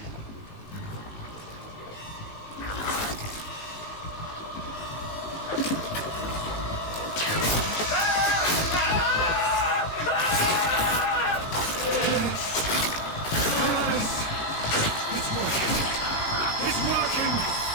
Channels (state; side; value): late; right; 19 ms